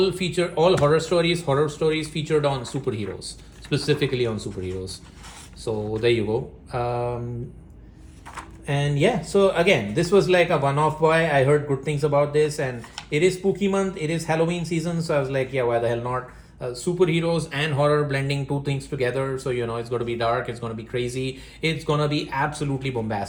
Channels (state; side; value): identical; both; correlation 1.00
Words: horror stories featured on superheroes, specifically on superheroes. So there you go. And yeah, so again, this was like a one-off buy. I heard good things about this, and it is spooky month, it is Halloween season, so I was like, yeah, why the hell not? Superheroes and horror blending 2 things together. So it's going to be dark, it's going to be crazy, it's going to be absolutely